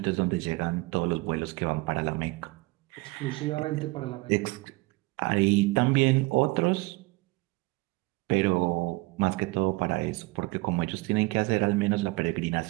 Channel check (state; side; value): quieter; left; 23.3 dB